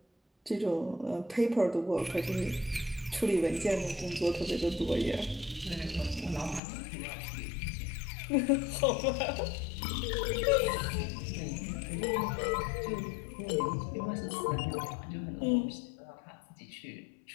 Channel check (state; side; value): drops out; right; at 6.6 s